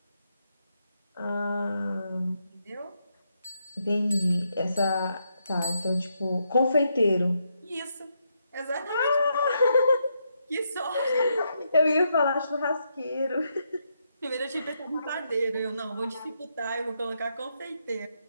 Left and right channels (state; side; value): inverted; both; correlation -0.80